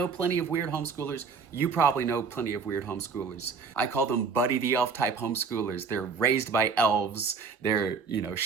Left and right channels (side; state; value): left; quieter; 5.4 dB